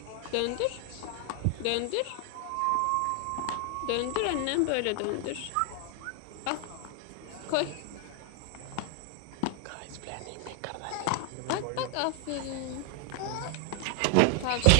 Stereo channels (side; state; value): both; different; correlation 0.00